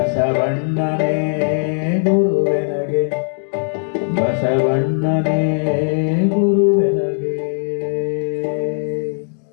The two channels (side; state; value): right; silent; 60 dB below the other